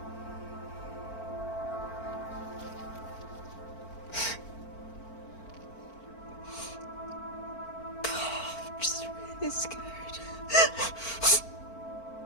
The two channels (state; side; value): late; right; 4.4 ms